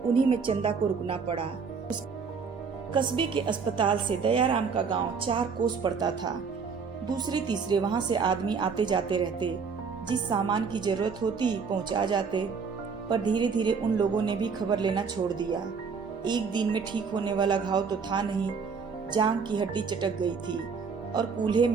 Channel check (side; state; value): left; quieter; 5.5 dB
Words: उन्हीं में चंदा को रुकना पड़ा। कस्बे के अस्पताल से दयाराम का गांव 4 कोस पड़ता था। दूसरे तीसरे वहां से आदमी आते जाते रहते, जिस सामान की जरूरत होती पहुंचा जाते। पर धीरे धीरे उन लोगों ने भी खबर लेना छोड़ दिया। एक दिन में ठीक होने वाला घाव तो था नहीं, जांघ की हड्डी चटक गई थी और कूल्हे